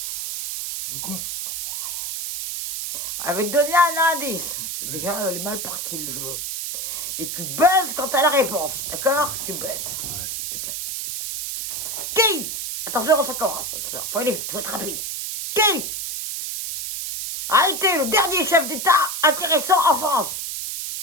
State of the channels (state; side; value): noise; right; hiss, 4 dB below the sound